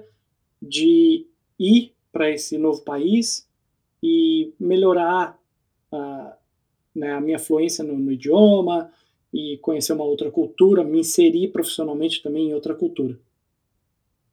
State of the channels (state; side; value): identical; both; correlation 1.00